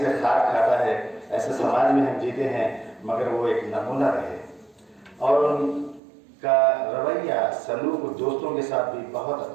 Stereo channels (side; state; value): left; drops out; at 6.0 s